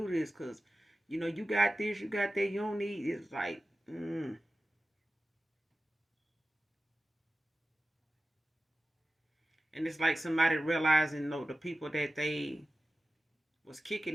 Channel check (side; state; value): both; normal; correlation 0.95